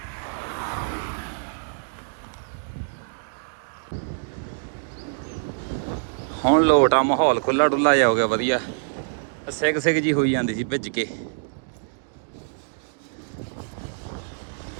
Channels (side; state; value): left; silent; digital silence